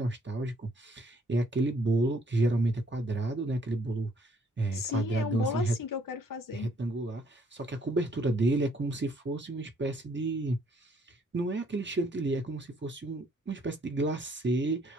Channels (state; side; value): normal; both; correlation 0.65